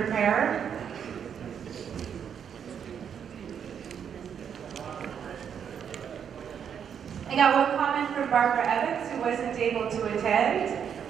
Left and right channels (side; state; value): left; quieter; 7.9 dB